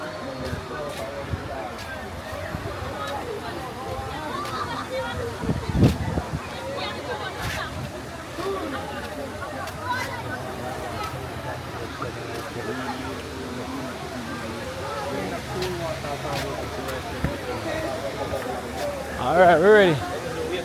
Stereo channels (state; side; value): identical; both; correlation 1.00